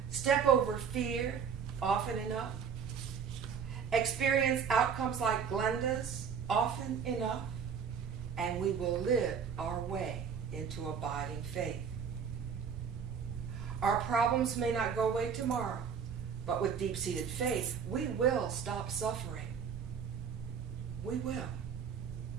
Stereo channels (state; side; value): quieter; left; 6.9 dB